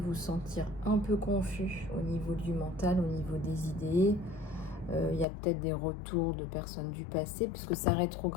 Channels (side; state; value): right; drops out; at 5.2 s